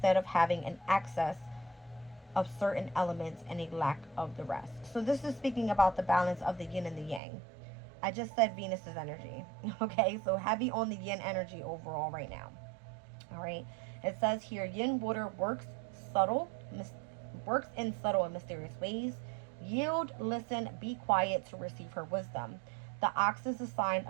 of having an excess of certain elements and a lack of the rest. So this is speaking about the balance of the yin and the yang. I just said Venus's energy. Okay, so heavy on the yin energy overall right now. All right. It says here, yin water subtle, works in subtle and mysterious ways. Yield, listen, be quiet to receive her wisdom. The ox is a sign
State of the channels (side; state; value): left; drops out; at 7.2 s